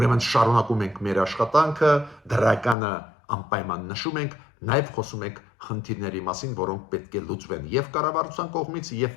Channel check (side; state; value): right; drops out; at 2.8 s